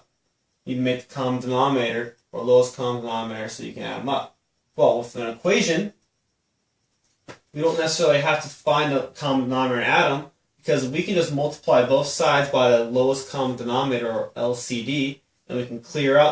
You need to make the common denominator or lowest common denominator so you can add them up. Well, with an equation, we don't necessarily have to find the common denominator and add them, because we can just multiply both sides by the lowest common denominator, or LCD, and we can clear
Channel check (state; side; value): identical; both; correlation 1.00